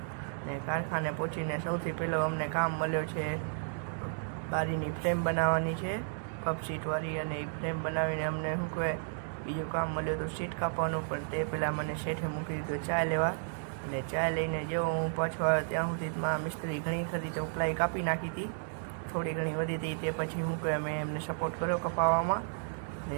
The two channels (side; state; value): left; silent; digital silence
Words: ને કારખાને પહોંચીને સૌથી પહેલો અમને કામ મળ્યો છે ગાડીની ફ્રેમ બનાવવાની છે, કપ સીટવાળી. અને એ ફ્રેમ બનાવીને અમને શું કહેવાય બીજું કામ મળ્યું હતું સીટ કાપવાનું. પણ તે પહેલાં મને શેઠે મૂકી દીધું ચા લેવા. અને ચા લઈને જેવો હું પાછો આવ્યો ત્યાં સુધીમાં મિસ્ત્રી ઘણી ખરી ચોપલાઈ કાપી નાખી હતી, થોડી ઘણી વધી હતી. તે પછી હું કહેવાય મેં એમને સપોર્ટ કર્યો કપાવવામાં.